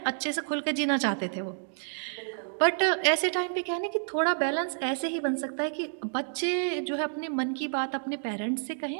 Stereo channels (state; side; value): silent; left; digital silence